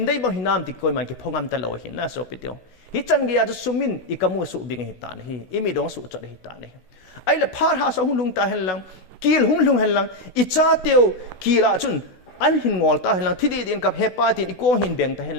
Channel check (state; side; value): late; right; 16 ms